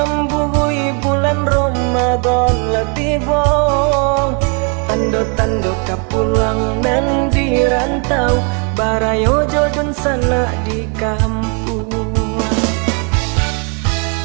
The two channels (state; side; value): quieter; left; 36.8 dB